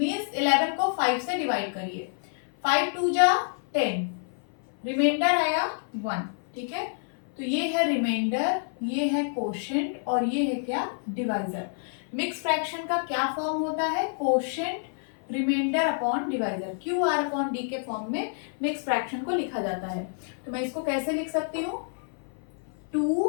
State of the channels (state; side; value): silent; right; 55 dB below the other